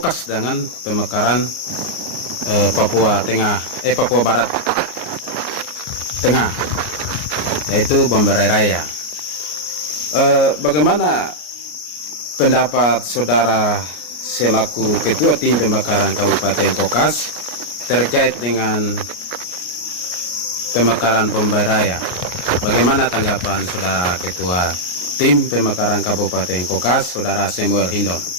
dengan pemekaran Papua Barat Tengah, yaitu Bomberai Raya. Bagaimana pendapat saudara selaku ketua tim pemekaran Kabupaten Kokas terkait dengan pemekaran Bomberai Raya? Bagaimana tanggapan saudara ketua tim pemekaran Kabupaten Kokas, saudara Samuel Hindon?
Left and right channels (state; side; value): late; right; 33 ms